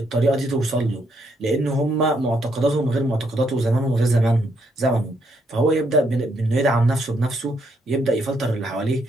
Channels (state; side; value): normal; both; correlation 0.74